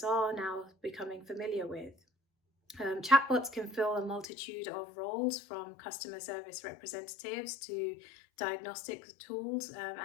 are now becoming familiar with. Chatbots can fill a multitude of roles, from customer service representatives to diagnostic tools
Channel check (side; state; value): right; drops out; at 4.2 s